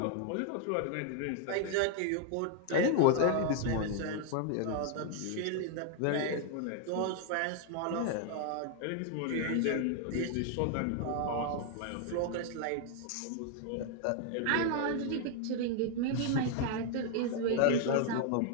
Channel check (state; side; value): different; both; correlation 0.00